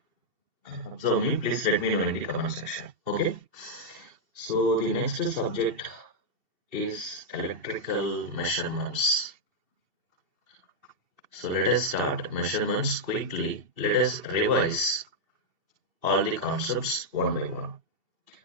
observe me, please let me know in the comment section. Okay. So the next subject is electrical measurements. So let us start measurements quickly. Let us revise all the concepts one by one.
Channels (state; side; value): late; left; 2.7 ms